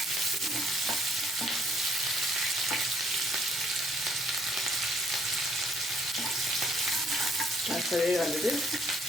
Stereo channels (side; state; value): both; normal; correlation 0.66